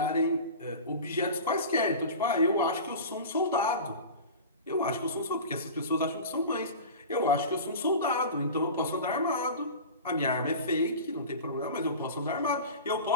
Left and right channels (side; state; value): both; inverted; correlation -0.34